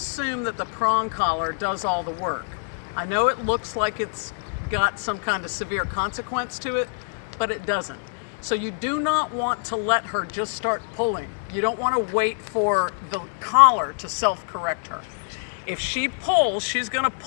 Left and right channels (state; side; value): silent; right; digital silence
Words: that the prong collar does all the work. I know it looks like it's got some kind of severe consequence to it, but it doesn't. So you do not want to let her just start pulling. You don't want to wait for the collar to self-correct her. If she pulls, she's going to